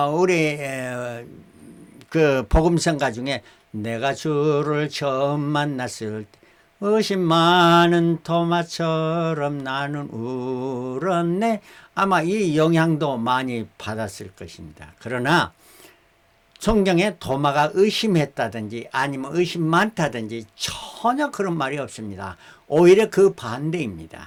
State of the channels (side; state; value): both; identical; correlation 1.00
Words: 우리 그 복음성가 중에 내가 주를 처음 만났을 때 의심 많은 도마처럼 나는 울었네, 아마 이 영향도 많이 받았을 것입니다. 그러나 성경에 도마가 의심했다든지 아니면 의심 많다든지 전혀 그런 말이 없습니다. 오히려 그